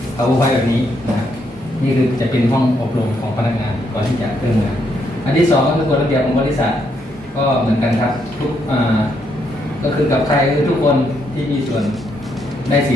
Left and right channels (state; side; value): normal; both; correlation 0.76